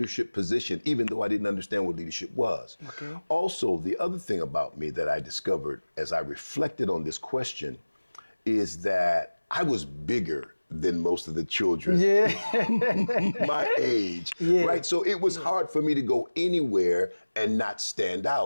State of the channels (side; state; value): both; inverted; correlation -1.00